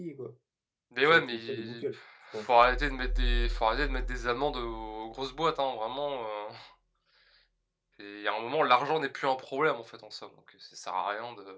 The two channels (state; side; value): identical; both; correlation 1.00